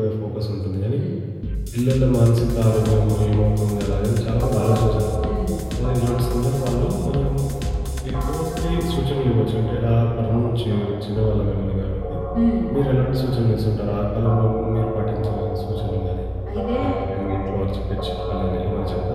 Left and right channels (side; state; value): both; identical; correlation 1.00